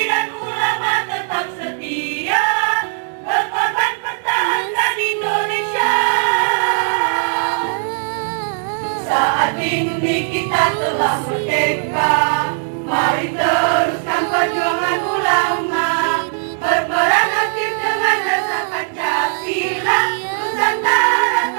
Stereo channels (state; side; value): silent; left; 67 dB below the other